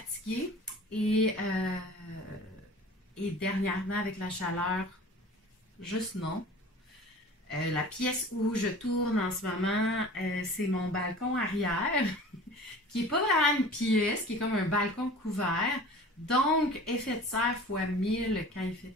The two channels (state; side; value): normal; both; correlation 0.42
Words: Et dernièrement, avec la chaleur, juste non. La pièce où je tourne en ce moment, c'est mon balcon arrière, qui n'est pas vraiment une pièce, qui est comme un balcon couvert. Donc, effet de serre fois 1000 quand il